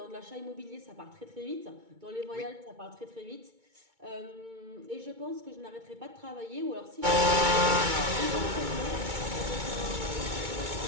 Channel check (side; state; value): left; late; 2.2 ms